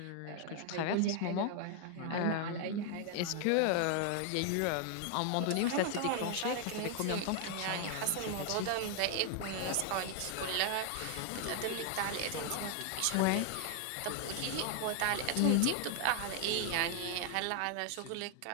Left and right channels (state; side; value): different; both; correlation 0.00